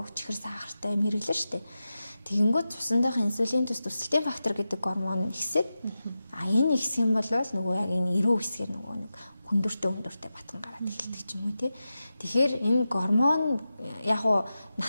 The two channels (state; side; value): inverted; both; correlation -0.92